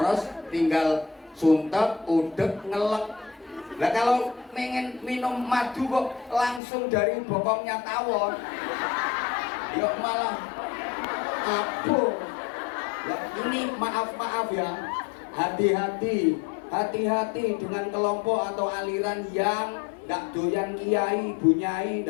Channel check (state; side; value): drops out; right; at 6.6 s